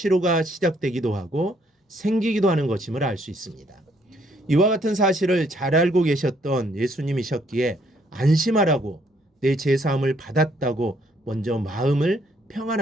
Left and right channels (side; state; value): both; normal; correlation 0.68